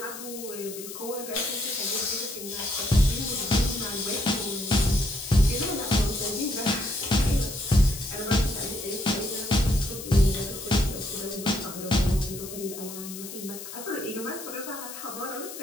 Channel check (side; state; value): left; noise; hiss, 11 dB below the sound